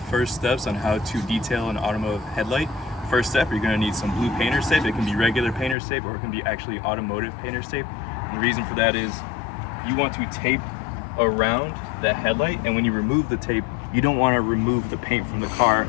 steps on how to detail an automotive headlight. First step, you're going to need some blue painter's tape. It can be regular painter's tape or it can be actually automotive painter's tape. And the reason for that is you want to tape around the headlight, and when you remove the tape, you don't want to remove the paint from the car,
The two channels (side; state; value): right; drops out; at 5.8 s